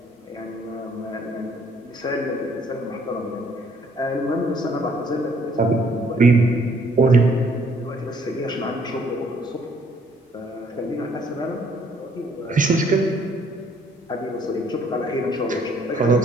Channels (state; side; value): normal; both; correlation 0.64